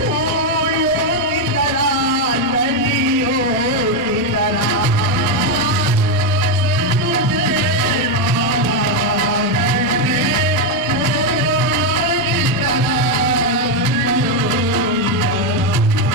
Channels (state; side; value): normal; both; correlation 0.04